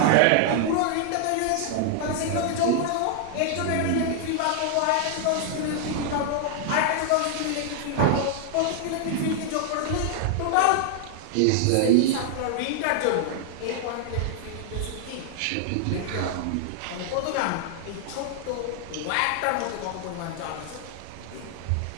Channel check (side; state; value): both; different; correlation 0.00